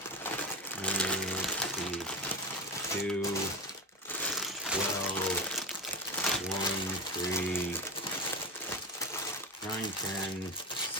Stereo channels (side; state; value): both; normal; correlation 0.17